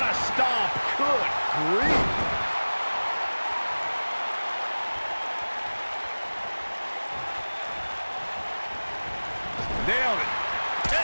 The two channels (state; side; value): inverted; both; correlation -1.00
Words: a stomp. Good grief. Nailed it.